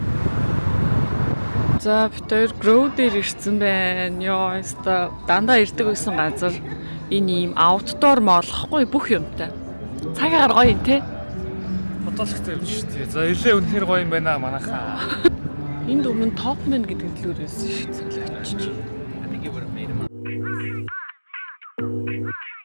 За бид хоёр Grow дээр ирсэн байна. Йоо, өста дандаа ирдэг байсан газар. Энэ ийм outdoor молохгүй бүх юмтай. Цагаар гоё юм те. Бодолхтой юм шүү дээ. За илээ үнэхээр гоё юм байна манайхаа. Энд өмнө Topman гэдэг төлөөрөөс шүү цэлээч.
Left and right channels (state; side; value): inverted; both; correlation -1.00